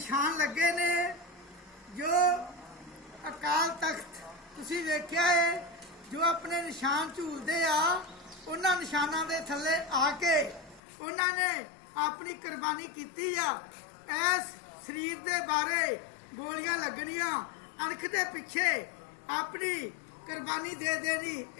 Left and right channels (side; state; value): right; drops out; at 10.8 s